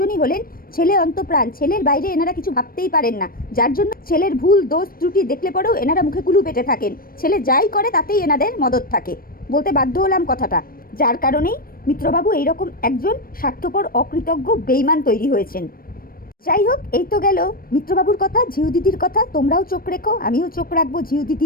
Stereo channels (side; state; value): right; late; 0.42 ms